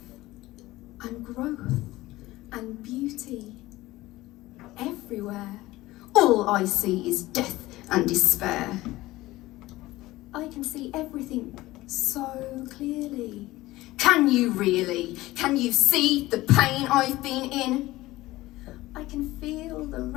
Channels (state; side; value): quieter; right; 18.0 dB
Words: and growth and beauty everywhere. All I see is death and despair. I can see everything so clearly. Can you really? Can you see the pain I've been in? I can feel the